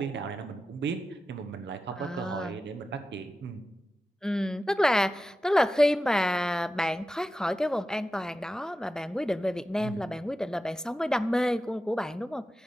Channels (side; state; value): both; normal; correlation 0.92